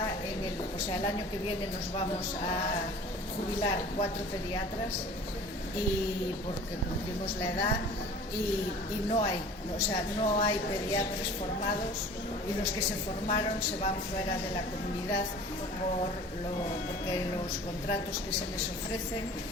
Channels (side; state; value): both; normal; correlation 0.44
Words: el año que viene nos vamos a jubilar 4 pediatras y porque cumplimos la edad y no hay pediatras formados, y los que se formaron se van fuera de la comunidad porque los contratos que se les ofrecen